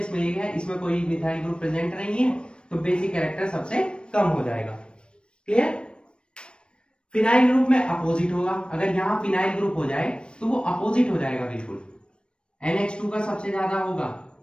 एक है, इसमें कोई मिथाइल ग्रुप प्रेजेंट नहीं है, तो बेसिक कैरेक्टर सबसे कम हो जाएगा। क्लियर। फिनाइल ग्रुप में अपोजिट होगा, अगर यहाँ फिनाइल ग्रुप हो जाए तो वो अपोजिट हो जाएगा बिल्कुल, NH2 का सबसे ज्यादा होगा,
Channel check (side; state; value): right; late; 0.056 ms